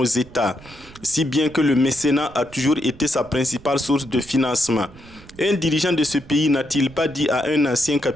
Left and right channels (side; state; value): right; noise; rumble, 21 dB below the sound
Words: États, si bien que le mécénat a toujours été sa principale source de financement. Un dirigeant de ce pays n'a-t-il pas dit à un ancien